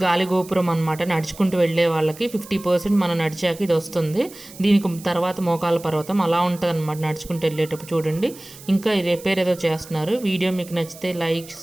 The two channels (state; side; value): noise; right; hiss, 18 dB below the sound